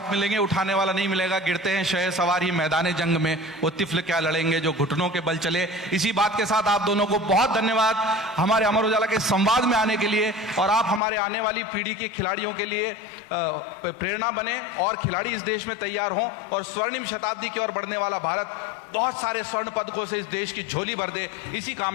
मिलेंगे, उठाने वाला नहीं मिलेगा। गिरते हैं शह सवार ही मैदान जंग में, वो तिफल क्या लड़ेंगे जो घुटनों के बल चले। इसी बात के साथ आप दोनों को बहुत धन्यवाद हमारे अमर उजाला के संवाद में आने के लिए, और आप हमारे आने वाली पीढ़ी के खिलाड़ियों के लिए प्रेरणा बने और खिलाड़ी इस देश में तैयार हों, और स्वर्णिम शताब्दी की ओर बढ़ने वाला भारत बहुत सारे स्वर्ण पदकों से इस देश की झोली भर दे। इसी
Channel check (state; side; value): drops out; right; at 11.0 s